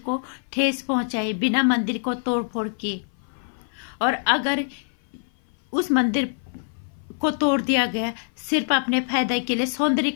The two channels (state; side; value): silent; right; 56 dB below the other